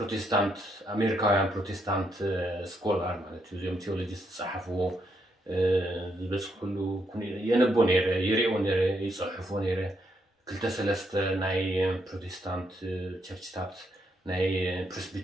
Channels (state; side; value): normal; both; correlation 0.77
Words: ኣሜሪካውያን ፕሮቴስታንት ስኮላር ማለት እዩ እዚኦም ቴዎሎጂስት ዝፀሓፍዎ ዝበፅሕሉ የነቦ ነይረ ይሪኦ ነይረ ይፅሕፎ ነይረ ክልተ ሰለስተ ናይ ፕሮቴስታንት ቸርችታት ናይ